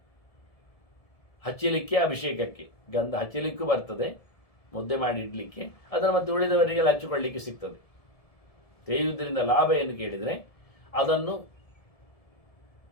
ಹಚ್ಚಲಿಕ್ಕೆ, ಅಭಿಷೇಕಕ್ಕೆ ಗಂಧ ಹಚ್ಚಲಿಕ್ಕೂ ಬರ್ತದೆ, ಮುದ್ದೆ ಮಾಡಿ ಇಡಲಿಕ್ಕೆ, ಅದನ್ನು ಮತ್ತೆ ಉಳಿದವರಿಗೆಲ್ಲ ಹಚ್ಚಿಕೊಳ್ಳಿಕ್ಕೆ ಸಿಗ್ತದೆ. ತೇಯುವುದರಿಂದ ಲಾಭ ಏನು ಕೇಳಿದರೆ ಅದನ್ನು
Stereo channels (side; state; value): right; late; 1.7 ms